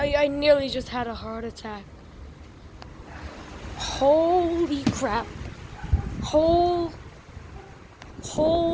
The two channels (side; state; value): both; identical; correlation 1.00